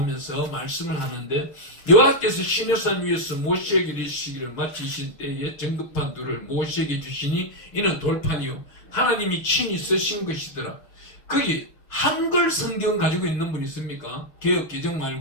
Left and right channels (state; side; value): late; right; 6.5 ms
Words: 말씀을 하는데 여호와께서 시내산 위에서 모세에게 이르시기를 마치신 때에 정급판 둘을 모세에게 주시니 이는 돌판이요 하나님이 친히 쓰신 것이더라. 거기 한글 성경 가지고 있는 분 있습니까? 개역 개정